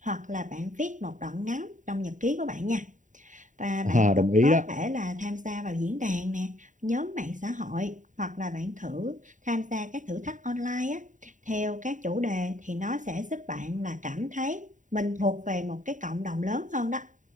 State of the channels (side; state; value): left; late; 0.37 ms